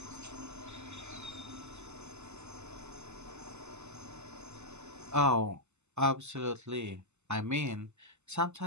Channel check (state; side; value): late; left; 0.83 ms